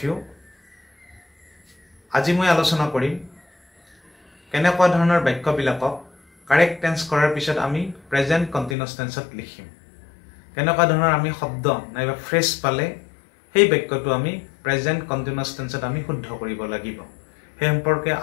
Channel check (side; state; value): right; drops out; at 8.8 s